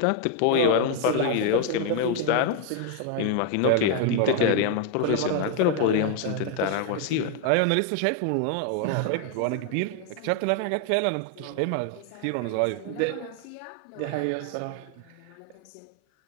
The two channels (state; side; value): different; both; correlation 0.00